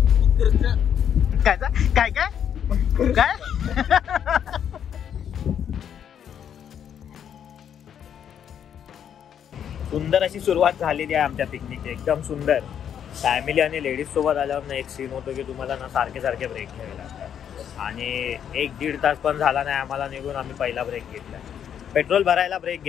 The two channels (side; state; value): right; quieter; 8.9 dB